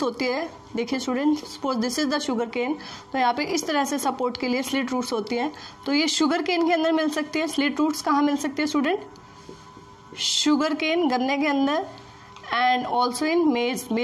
होती है. देखिए student, suppose this is the sugarcane, तो यहाँ पे इस तरह से सपोर्ट के लिए स्लिट रूट्स होती हैं. तो ये शुगर केन के अंदर मिल सकती है. स्लिट रूट्स कहाँ मिल सकती है स्टूडेंट, शुगर केन, गन्ने के अंदर, एंड ऑल्सो इन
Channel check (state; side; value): identical; both; correlation 1.00